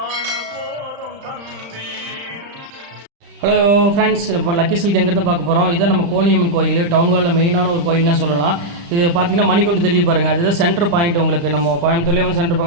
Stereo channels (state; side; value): late; left; 35 ms